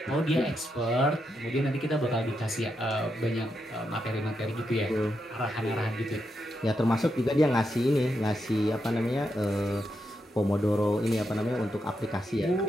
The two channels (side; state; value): both; normal; correlation 0.84